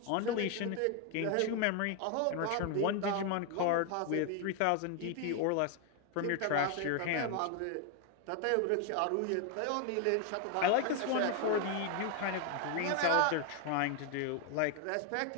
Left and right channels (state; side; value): different; both; correlation 0.01